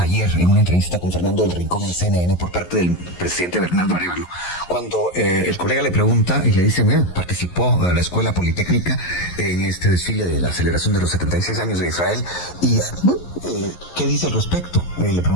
en una entrevista con Fernando del Rincón en CNN por parte del presidente Bernardo Arévalo, cuando el colega le pregunta y le dice, mira, participó de la Escuela Politécnica en este desfile de la celebración de los 76 años de Israel, y ¿qué dice al respecto? Le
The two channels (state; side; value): late; right; 11 ms